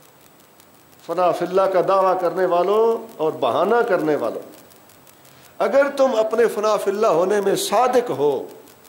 فنا فی اللہ کا دعویٰ کرنے والوں اور بہانہ کرنے والوں, اگر تم اپنے فنا فی اللہ ہونے میں صادق ہو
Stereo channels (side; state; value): both; identical; correlation 1.00